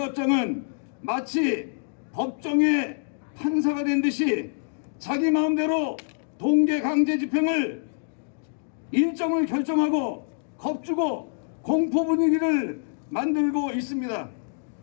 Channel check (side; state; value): right; silent; digital silence